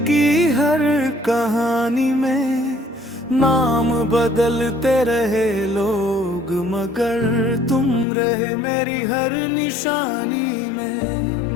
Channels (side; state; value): right; drops out; at 8.1 s